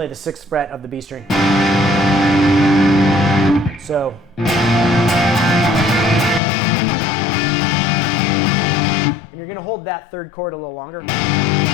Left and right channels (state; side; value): drops out; right; at 6.4 s